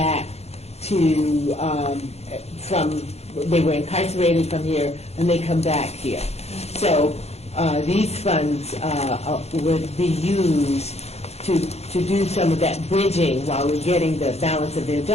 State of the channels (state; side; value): late; right; 0.31 ms